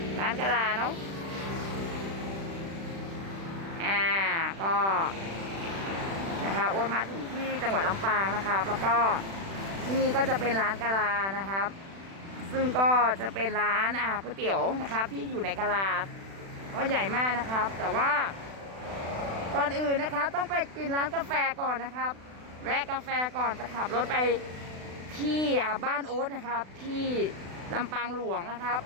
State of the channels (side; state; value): left; late; 36 ms